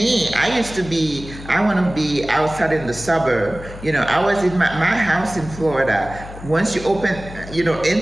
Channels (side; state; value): left; noise; hum, 14 dB below the sound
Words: I want to be outside in the suburb. I was in my house in Florida. Once you